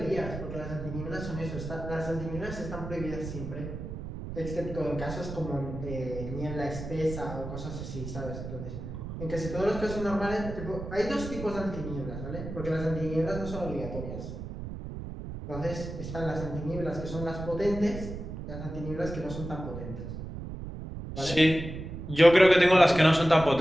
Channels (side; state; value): right; noise; rumble, 8 dB below the sound